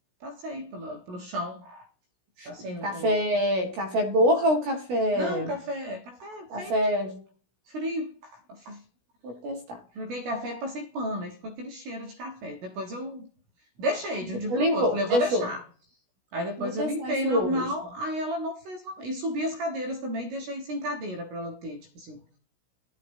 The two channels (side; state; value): left; late; 16 ms